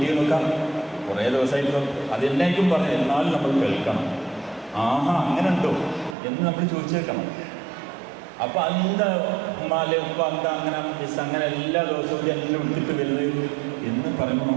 നോക്കാം, കുറേ ദിവസമായിട്ടും അതെന്നായിരിക്കും പറഞ്ഞു. എന്നാലും നമ്മൾ കേൾക്കണം. ആഹാ അങ്ങനെ ഉണ്ടോ എന്ന് നമ്മൾ ചോദിച്ചു കേൾക്കണം. അപ്പോൾ എന്താ ഉമ്മാലെ ഉപ്പ എന്താ അങ്ങനെ മിസ് അങ്ങനെ എല്ലാ ദിവസവും എല്ലാം എടുത്തിട്ട് വരുന്നത് എന്ന് പറയുമ്പോൾ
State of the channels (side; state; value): left; drops out; at 6.2 s